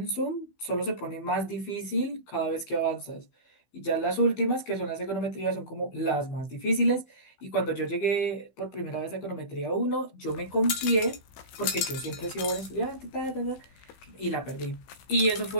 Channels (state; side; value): late; right; 15 ms